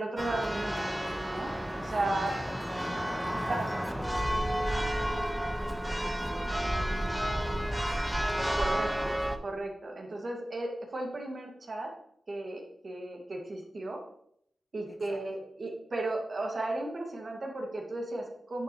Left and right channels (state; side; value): normal; both; correlation 0.96